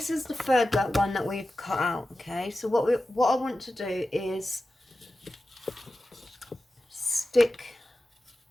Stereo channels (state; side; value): normal; both; correlation 0.93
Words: is the third one that we've cut out. Okay, so what I want to do is stick